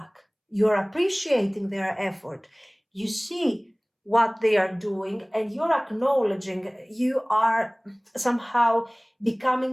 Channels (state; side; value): identical; both; correlation 1.00